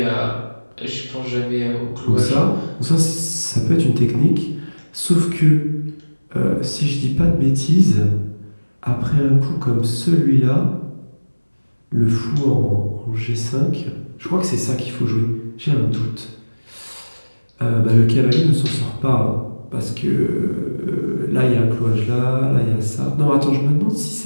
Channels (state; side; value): inverted; both; correlation -1.00